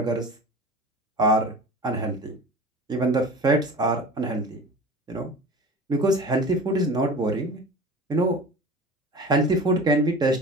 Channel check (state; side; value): normal; both; correlation 0.36